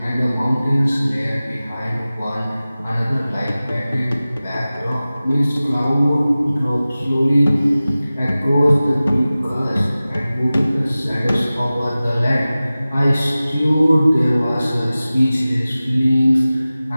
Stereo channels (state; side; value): inverted; both; correlation -0.97